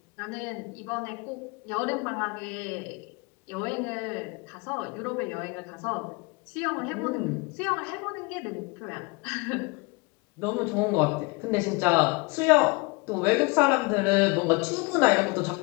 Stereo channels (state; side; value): quieter; right; 28.1 dB